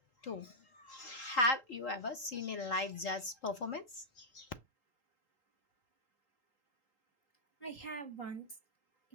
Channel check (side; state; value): right; late; 3.8 ms